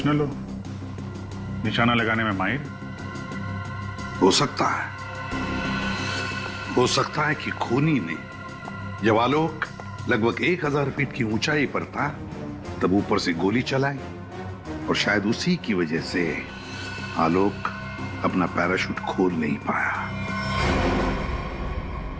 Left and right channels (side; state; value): both; identical; correlation 1.00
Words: हो, निशाना लगाने में माहिर। हो सकता है कि खूनी ने जब आलोक लगभग 1000 फीट की ऊंचाई पर था तब ऊपर से गोली चलाई और शायद उसी की वजह से आलोक अपना पैराशूट खोल नहीं पाया।